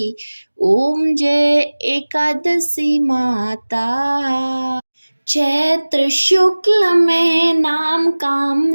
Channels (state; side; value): inverted; both; correlation -1.00